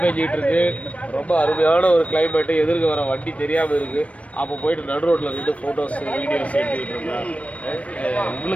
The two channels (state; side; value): late; right; 0.064 ms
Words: பெஞ்சிட்டு இருக்கு, ரொம்ப அருமையான ஒரு கிளைமேட், எதிர்க்க வர வண்டி தெரியாம இருக்கு. அப்போ போயிட்டு நடு ரோட்ல நின்று போட்டோஸ் வீடியோஸ் எடுத்துக்கிட்டு இருந்தா